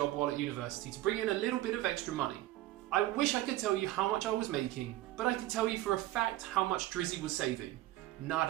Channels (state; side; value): quieter; left; 15.8 dB